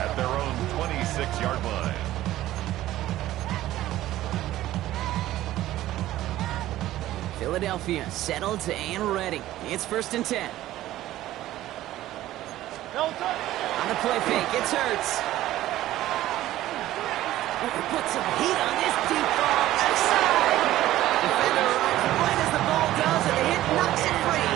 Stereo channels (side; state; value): left; quieter; 14.7 dB